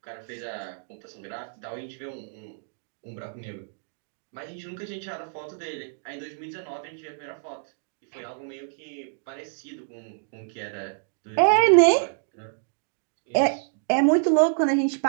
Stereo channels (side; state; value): left; silent; digital silence